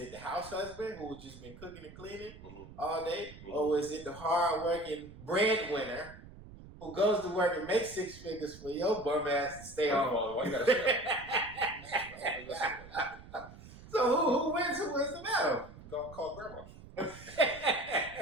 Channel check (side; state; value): right; noise; rumble, 17 dB below the sound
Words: the house husband who just been cooking and cleaning all day? Mm-hmm. Or was it the hard-working breadwinner who goes to work and makes six figures for your bum ass to stay home? Why you gotta say So who wins? Who wins the battle? Go call grandma.